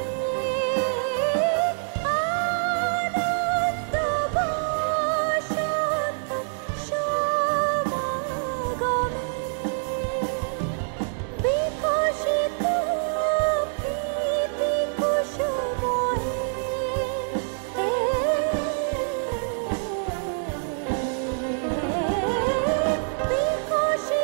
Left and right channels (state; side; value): silent; left; 61 dB below the other